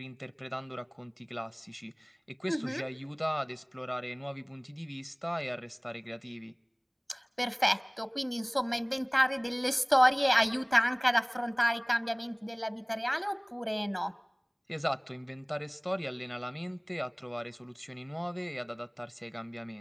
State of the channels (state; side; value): identical; both; correlation 1.00